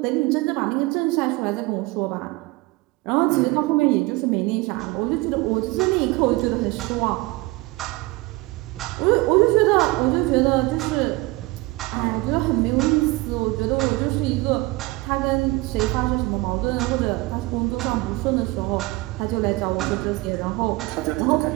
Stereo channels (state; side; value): quieter; left; 21.6 dB